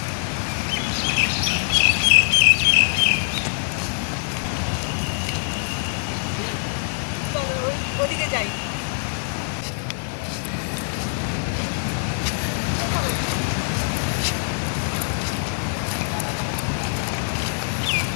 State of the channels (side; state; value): right; silent; 60 dB below the other